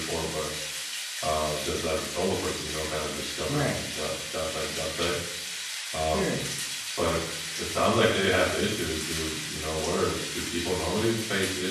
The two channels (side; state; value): both; identical; correlation 1.00